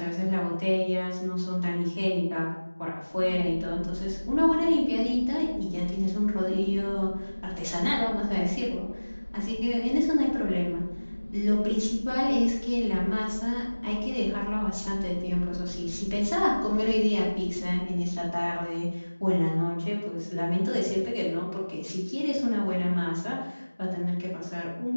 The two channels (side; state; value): both; inverted; correlation -1.00